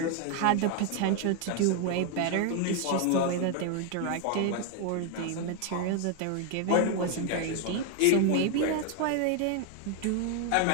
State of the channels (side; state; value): both; different; correlation 0.00